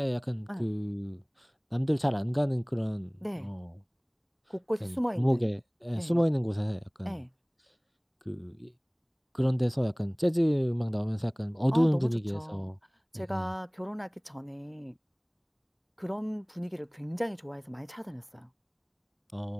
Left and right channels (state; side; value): identical; both; correlation 1.00